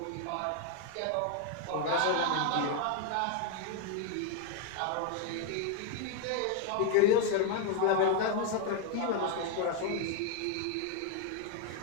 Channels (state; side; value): different; both; correlation 0.01